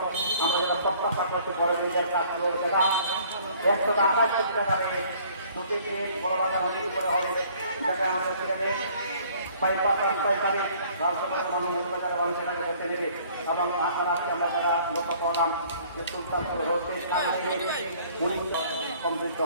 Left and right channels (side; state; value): both; inverted; correlation -0.56